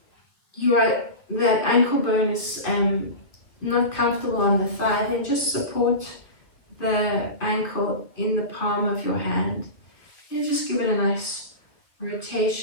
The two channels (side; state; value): right; late; 2.3 ms